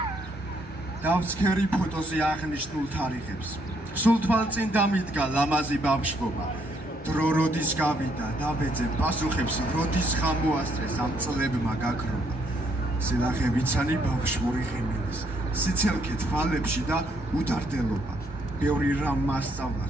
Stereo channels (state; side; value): normal; both; correlation 0.71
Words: დავცქერი ფოტოზე აღნიშნულ თარიღებს. სულ თვალწინ დამიდგა ლამაზი ბავშვობა. დრო როდის გავიდა და ვეძებ პასუხებს, როდის ხამოასწრეს ამ წლებმა გაქრობა. სილახე ვიცანი ბავშვური ხიმილის, სიცელქე თვალებში და უდარდელობა. ბევრი რამ მასწავლა